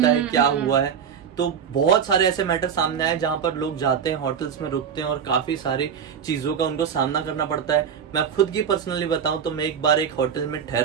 है, क्या हुआ है। तो बहुत सारे ऐसे मैटर सामने आए जहां पर लोग जाते हैं, होटल्स में रुकते हैं और काफी सारी चीजों का उनको सामना करना पड़ता है। मैं खुद की पर्सनली बताऊं तो मैं एक बार एक होटल में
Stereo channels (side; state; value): left; quieter; 7.6 dB